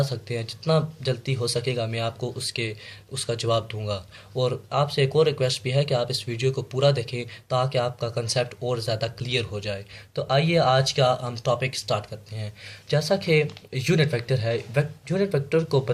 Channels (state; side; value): identical; both; correlation 1.00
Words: सकते हैं। जितना जल्दी हो सकेगा मैं आपको उसका जवाब दूंगा। और आपसे एक और रिक्वेस्ट भी है कि आप इस वीडियो को पूरा देखें ताकि आपका कंसेप्ट और ज़्यादा क्लियर हो जाए। तो आइए आज का हम टॉपिक स्टार्ट करते हैं। जैसा कि यूनिट वेक्टर है, यूनिट वेक्टर को